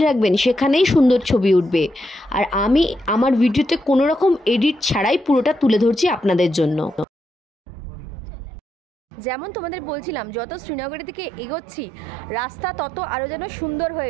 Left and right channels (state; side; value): drops out; left; at 7.1 s